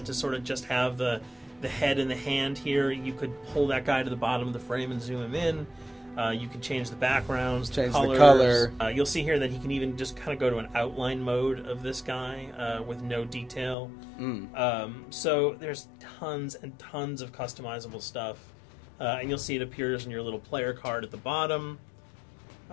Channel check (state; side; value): drops out; right; at 13.8 s